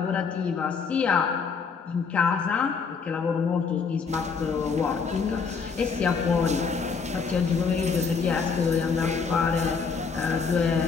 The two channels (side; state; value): right; quieter; 5.4 dB